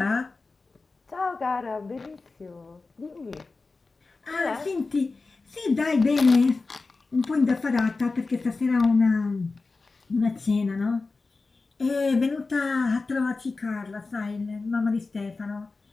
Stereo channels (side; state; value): right; quieter; 3.8 dB